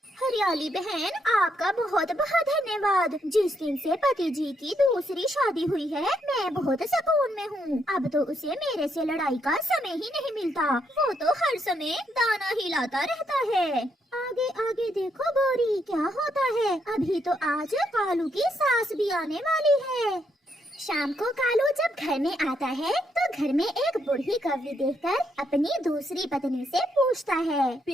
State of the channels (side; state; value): both; normal; correlation 0.76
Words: हरियाली बहन, आपका बहुत बहुत धन्यवाद। जिस दिन से पति जी की दूसरी शादी हुई है मैं बहुत सुकून में हूँ। अब तो उसे मेरे से लड़ाई का समय ही नहीं मिलता। वो तो हर समय दाना ही लाता रहता है। आगे आगे देखो गोरी, क्या होता है। अभी तो आज कालू की सास भी आने वाली है। शाम को कालू जब घर में आता है तो घर में एक बूढ़ी कौवी देखकर अपनी दूसरी पत्नी से पूछता है,